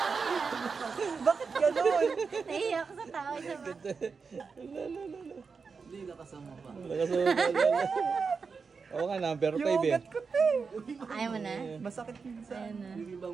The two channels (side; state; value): left; quieter; 5.1 dB